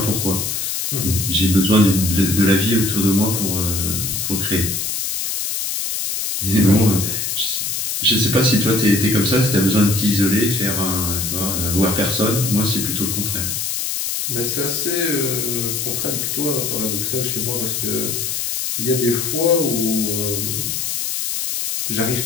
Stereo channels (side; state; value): left; noise; hiss, 2 dB below the sound